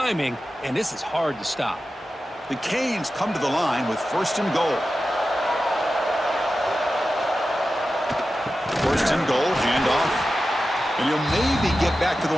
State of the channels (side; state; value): both; normal; correlation 0.93